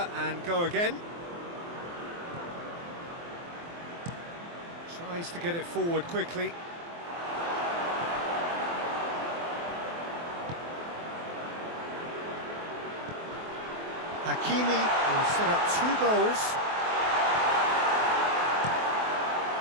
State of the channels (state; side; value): late; left; 23 ms